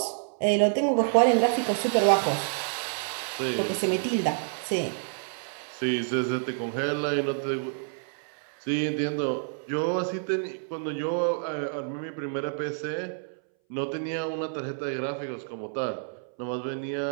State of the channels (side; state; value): left; silent; 59 dB below the other